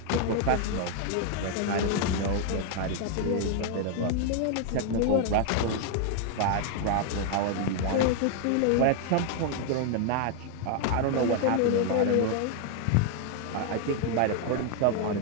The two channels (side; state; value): both; different; correlation 0.00